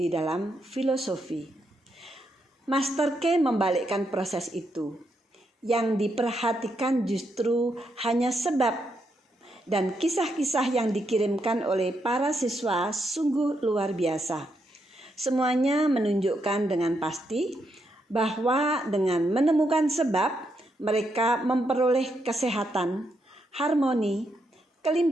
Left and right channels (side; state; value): both; normal; correlation 0.80